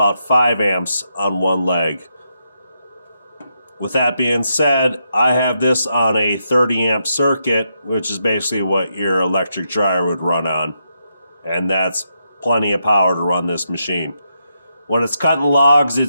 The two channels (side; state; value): both; inverted; correlation -0.82